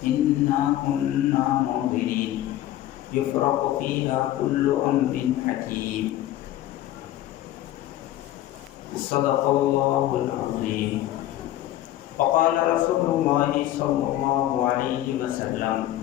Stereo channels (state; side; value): quieter; right; 13.9 dB